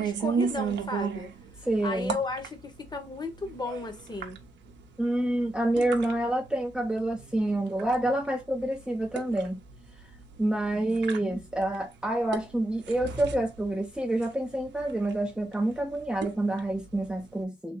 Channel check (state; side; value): normal; both; correlation 0.85